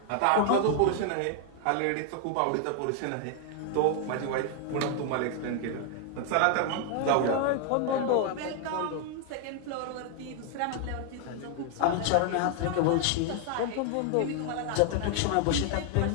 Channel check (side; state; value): both; different; correlation 0.00